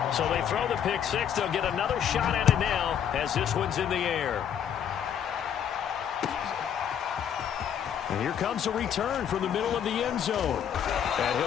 So they throw the pick 6. They'll get another shot at it now as this one's in the air. And here comes a return from the middle of the end zone. And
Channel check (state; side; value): quieter; right; 8.8 dB